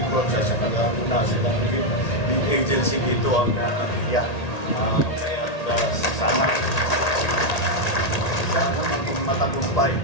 works sa kanila silang lead agency dito ang NIA. Kaya sana maging matagumpay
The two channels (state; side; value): late; right; 1.8 ms